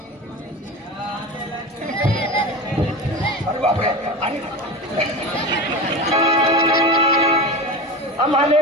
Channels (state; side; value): normal; both; correlation 0.27